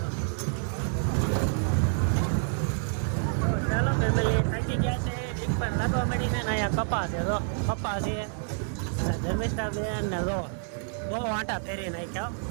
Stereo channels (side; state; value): left; silent; 59 dB below the other